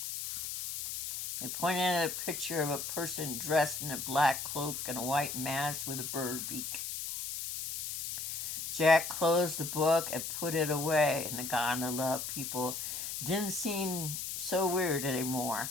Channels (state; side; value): noise; left; hiss, 5 dB below the sound